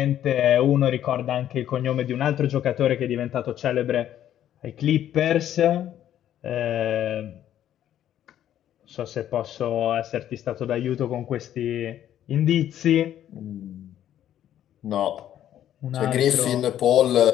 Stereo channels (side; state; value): right; quieter; 11.2 dB